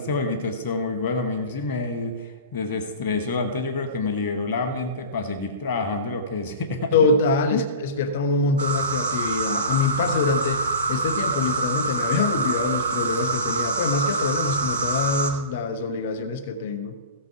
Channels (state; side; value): inverted; both; correlation -0.34